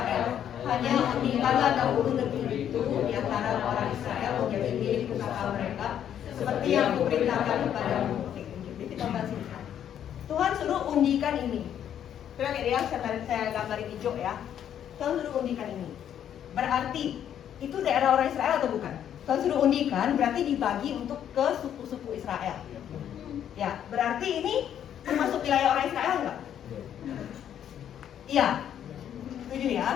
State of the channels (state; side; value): quieter; right; 9.8 dB